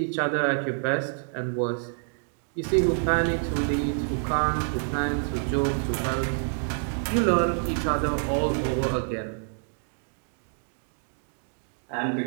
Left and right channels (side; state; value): left; silent; digital silence